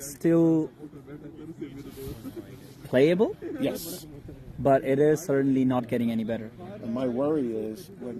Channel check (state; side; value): identical; both; correlation 1.00